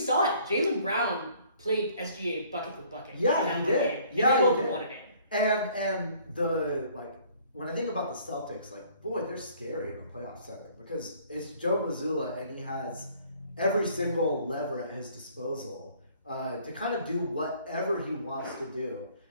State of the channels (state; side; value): inverted; both; correlation -0.58